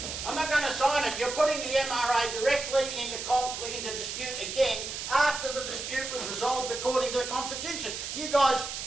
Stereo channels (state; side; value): noise; right; hiss, 6 dB below the sound